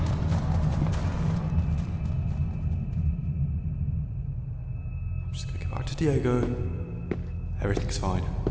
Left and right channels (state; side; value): identical; both; correlation 1.00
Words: I'm just gonna get back to Diego. Everything's fine.